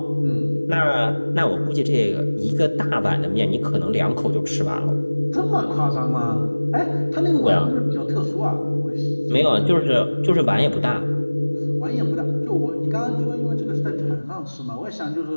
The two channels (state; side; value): inverted; both; correlation -1.00